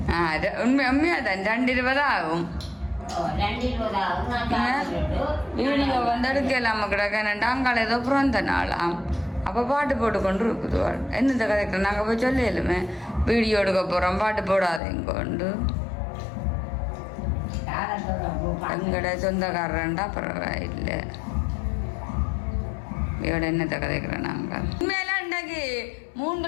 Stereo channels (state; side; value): drops out; right; at 14.8 s